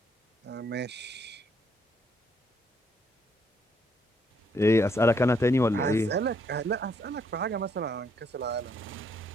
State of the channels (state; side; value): normal; both; correlation 0.71